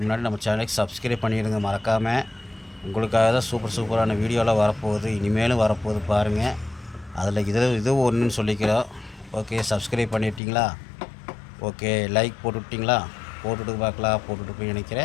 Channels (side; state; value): right; drops out; at 10.4 s